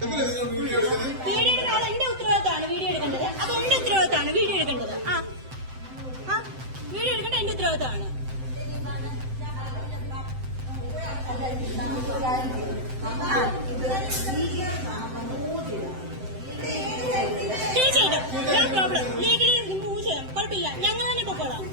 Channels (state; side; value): late; left; 7.8 ms